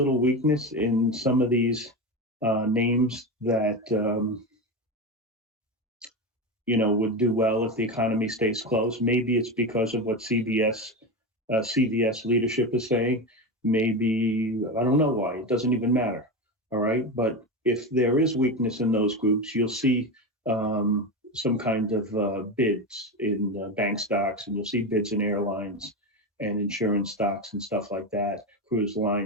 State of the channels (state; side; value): normal; both; correlation 0.19